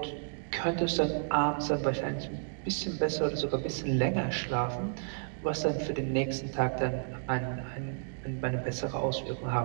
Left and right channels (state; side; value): silent; left; digital silence